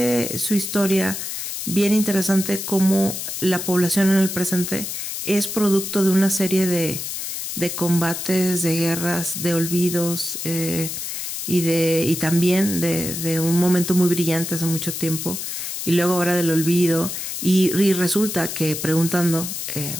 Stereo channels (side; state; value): left; noise; hiss, 5 dB below the sound